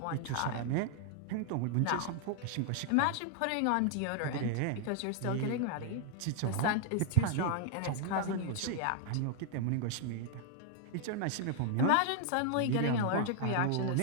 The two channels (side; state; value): both; different; correlation 0.00